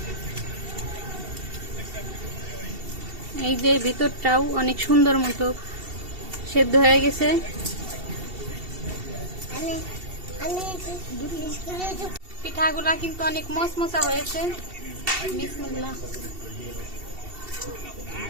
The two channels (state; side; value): late; left; 2.7 ms